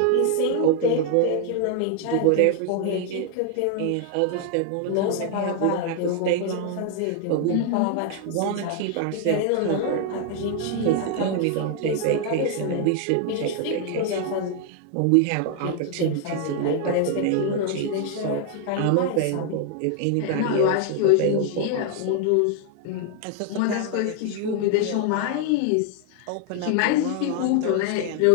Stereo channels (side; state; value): both; different; correlation 0.00